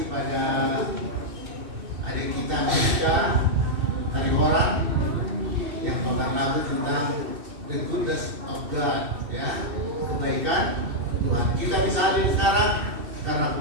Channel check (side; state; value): left; late; 2.6 ms